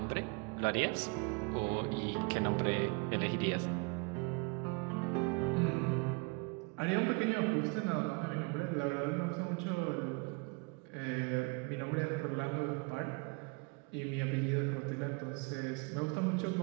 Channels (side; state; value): left; quieter; 31.0 dB